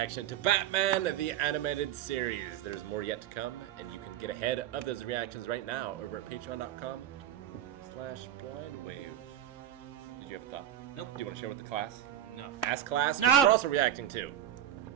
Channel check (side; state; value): left; quieter; 11.2 dB